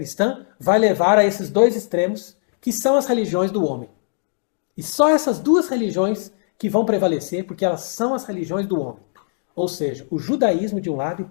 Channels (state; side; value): silent; right; digital silence